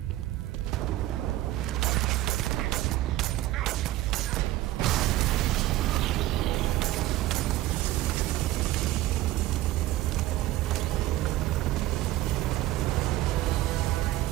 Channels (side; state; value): left; quieter; 15.9 dB